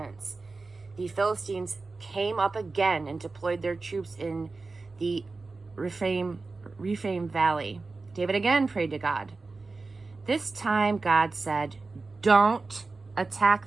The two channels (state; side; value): quieter; left; 3.8 dB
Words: The Philistines came up again and deployed their troops in the Rephaim Valley. David again prayed to God. This time, God said, "Don't